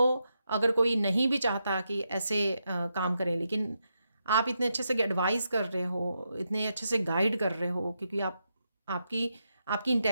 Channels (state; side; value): inverted; both; correlation -0.84